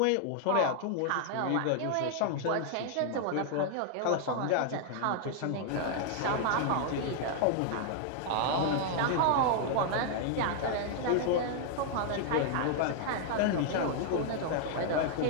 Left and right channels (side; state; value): both; different; correlation -0.01